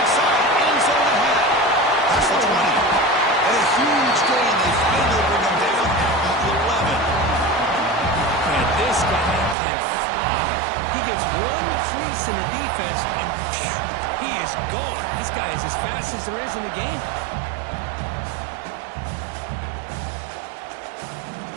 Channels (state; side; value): drops out; left; at 9.6 s